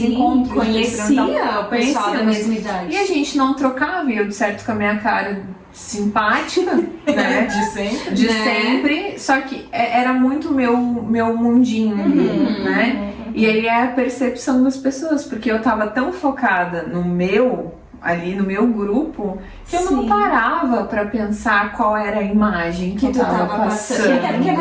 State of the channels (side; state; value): both; identical; correlation 1.00